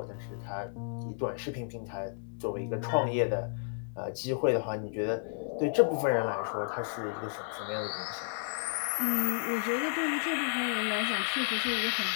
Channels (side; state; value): right; silent; digital silence